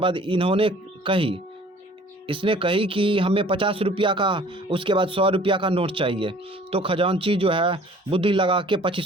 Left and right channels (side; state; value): both; normal; correlation 0.51